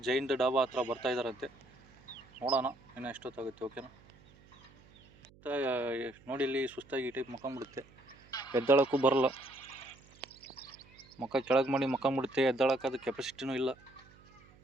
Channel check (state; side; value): noise; right; hum, 26 dB below the sound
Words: ಜೈನ್ ಡಾಬಾ ಹತ್ರ ಬರ್ತಾಯಿದ್ದಾರಂತೆ. ನೋಡೋಣ ಇನ್ನು ಎಷ್ಟೊತ್ತಾಗುತ್ತೆ. ಓಕೆನಾ? ನೋಡಿ ಇಲ್ಲಿ ಸುಸ್ತಾಗಿ ಈ ಟೈಪ್ ಮಕ್ಕೊಂಬಿಡುತ್ತೆ, ಎದ್ದಳಕ್ಕೂ ಬರಲ್ಲ. ಮುಖ ಕೆಳಗೆ ಮಾಡಿ ಮಕ್ಕೊಂಬಿಡುತ್ತೆ, ಎದ್ದಳಕ್ಕೆ ಅದು ಕೆಪಾಸಿಟಿನೂ ಇಲ್ಲ.